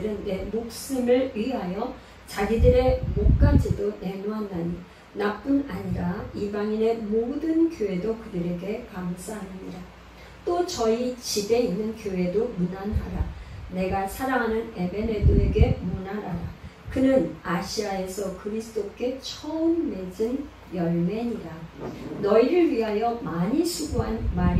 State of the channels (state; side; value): identical; both; correlation 1.00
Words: 내 목숨을 위하여 자기들의 목까지도 내놓았나니 나뿐 아니라 이방인의 모든 교회도 그들에게 감사하느니라. 또 저희 집에 있는 교회도 문안하라. 내가 사랑하는 에베네도에게 문안하라. 그는 아시아에서 그리스도께 처음 맺은 열매니라. 너희를 위하여 많이 수고한